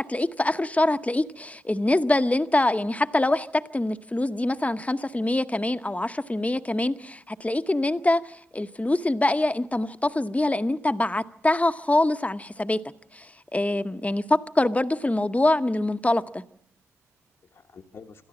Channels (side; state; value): both; normal; correlation 0.94